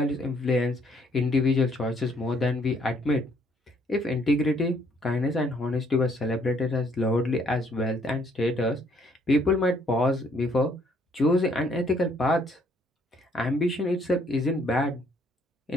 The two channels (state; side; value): normal; both; correlation 0.66